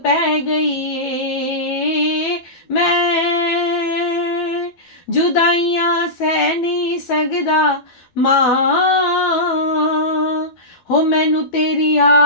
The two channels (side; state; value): right; late; 12 ms